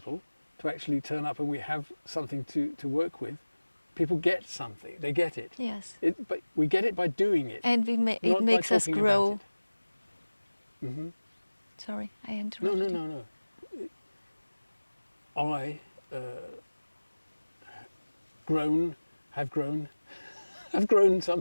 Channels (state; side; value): inverted; both; correlation -1.00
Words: to actually turn up and we have something to work with, people get something. They get it. Yes. But we get it by doing it, And it not by makes us talking grow. about it. Mm-hmm. Sorry, I interrupted. No. I have grown